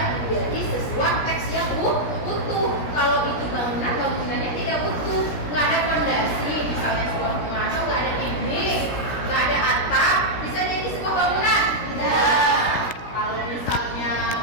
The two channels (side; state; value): right; late; 17 ms